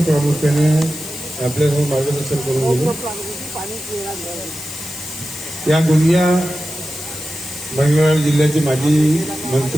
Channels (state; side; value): noise; left; hiss, 11 dB below the sound